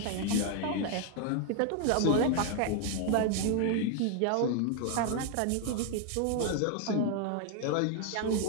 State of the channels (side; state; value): both; different; correlation 0.00